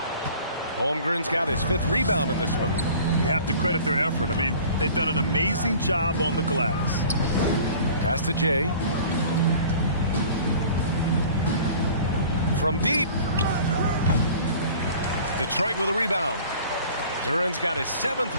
Holmgren's got his 5th rebound in this one. You have to credit their effort. I mean, they've done an amazing job on the glass. Pass to Jay. From deep. Detroit with a rebound. Duren's got his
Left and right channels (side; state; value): both; inverted; correlation -0.46